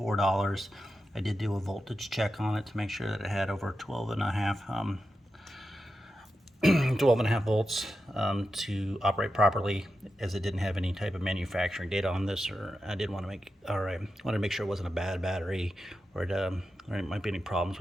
I did do a voltage check on it to make sure that it had over 12 and a half volts to operate properly, as it didn't have any type of manufacturing data on this, or I wanted to make sure it wasn't a bad battery, or it might be any problems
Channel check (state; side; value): normal; both; correlation 0.90